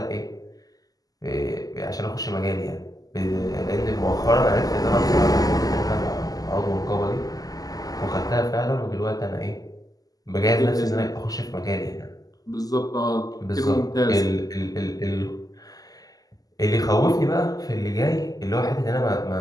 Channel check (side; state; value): right; late; 0.17 ms